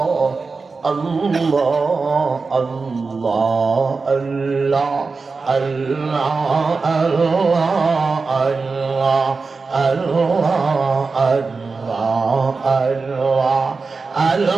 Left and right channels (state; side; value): quieter; left; 4.3 dB